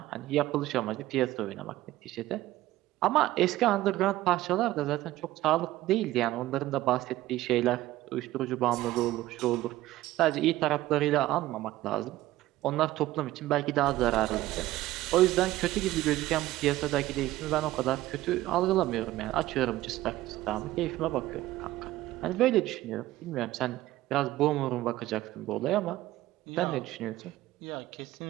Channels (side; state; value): left; quieter; 16.0 dB